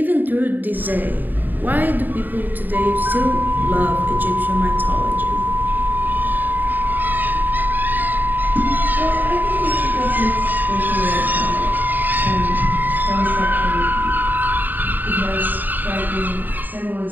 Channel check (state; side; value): late; left; 0.088 ms